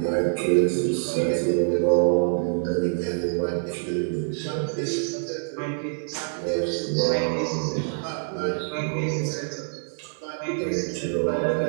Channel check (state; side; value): silent; left; 58 dB below the other